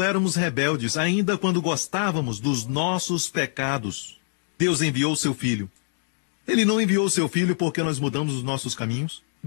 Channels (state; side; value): silent; right; digital silence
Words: éramos rebeldes, ainda quando gostávamos dos nossos pecados, Deus enviou seu Filho. Ele não enviou seu Filho porque nós mudamos os nossos caminhos.